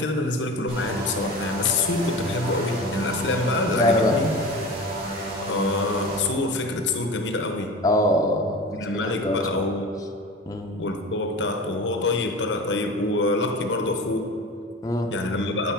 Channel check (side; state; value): both; normal; correlation 0.33